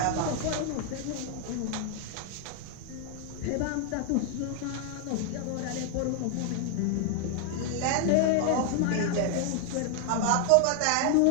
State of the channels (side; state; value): both; different; correlation 0.00